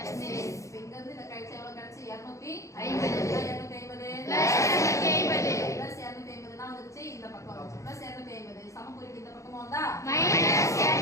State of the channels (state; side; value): late; right; 0.15 ms